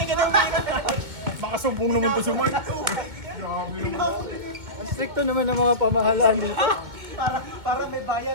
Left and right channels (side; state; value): left; late; 2.2 ms